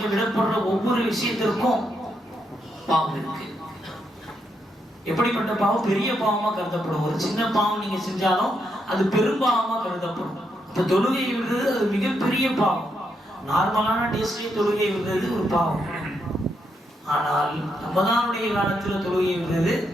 விடப்படுற ஒவ்வொரு விஷயத்திற்கும் பாவம் இருக்கு. எப்படிப்பட்ட பாவம்? பெரிய பாவமா கருதப்படும். ஒரு சின்ன பாவம் நீங்க செஞ்சாலும் அது பெரும்பாவமா கருதப்படும். அப்ப தொழுகை விடுறது அது மிகப்பெரிய பாவம். நார்மலான டேஸ்ட்லயே தொழுகை விடுறது ஒரு பாவம். ஆனால் ரமதானுடைய காலத்துல தொழுகை விடுறது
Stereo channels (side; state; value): both; normal; correlation 0.80